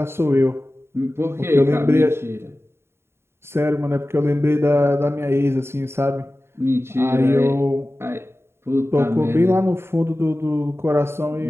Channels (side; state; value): left; late; 0.12 ms